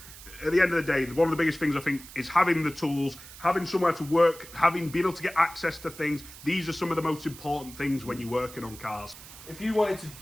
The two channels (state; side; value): noise; right; hiss, 17 dB below the sound